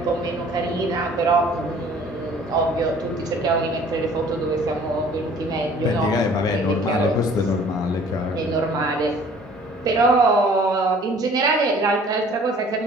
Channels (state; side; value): normal; both; correlation 0.52